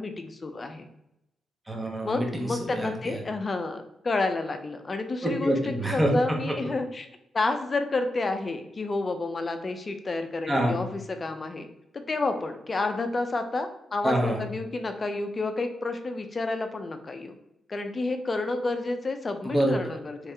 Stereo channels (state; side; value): normal; both; correlation 0.88